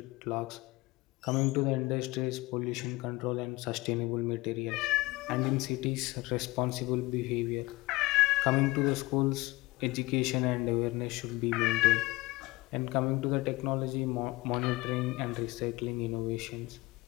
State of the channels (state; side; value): quieter; right; 21.6 dB